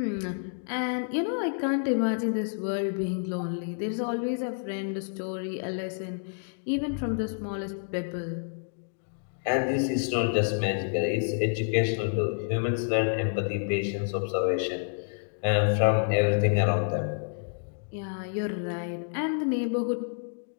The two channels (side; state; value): right; silent; digital silence